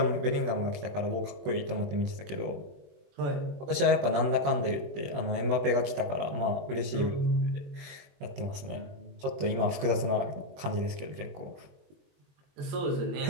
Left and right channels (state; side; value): late; left; 21 ms